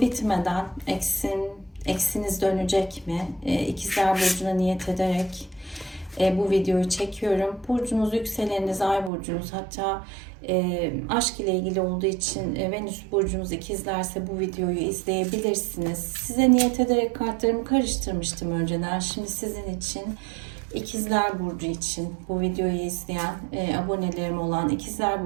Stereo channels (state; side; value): drops out; left; at 9.1 s